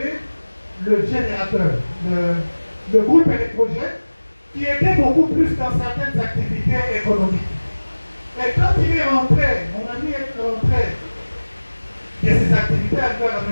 le générateur, le groupe électrogène, qui aidait beaucoup plus dans certaines activités économiques. Et quand il est rentré, mon ami est rentré de ses activités à la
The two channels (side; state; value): both; inverted; correlation -1.00